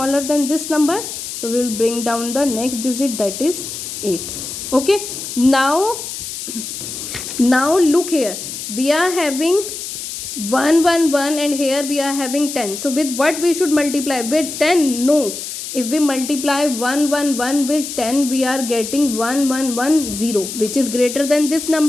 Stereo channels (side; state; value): left; noise; hiss, 7 dB below the sound